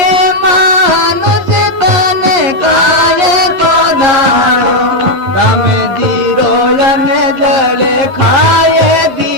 मानस तने काय को धार्यो, राम दीरो जने जले खाए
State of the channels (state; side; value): late; left; 11 ms